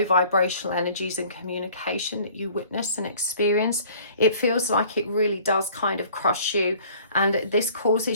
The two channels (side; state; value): both; inverted; correlation -0.52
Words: vibrational energies and communication that you witness and experience. It feels like it really does kind of crush you, and this